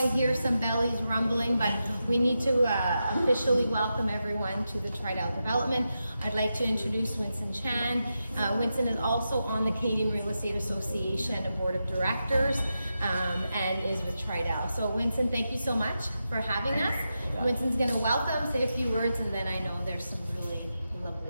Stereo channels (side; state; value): both; inverted; correlation -0.89